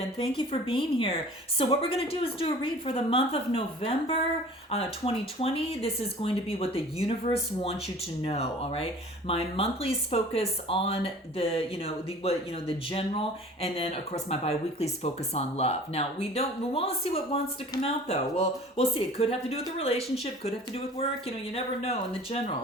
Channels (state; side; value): normal; both; correlation 0.46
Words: thank you for being here. So what we're going to do is do a read for the month of November 2020. This is going to be what the universe wants you to know, all right? My monthlies focus on the general, and then of course my bi-weeklies focus on love. Now we want to see what wants to come out though. Well, we'll see. It could have to do with the relationship, could have to do with work, you never know in the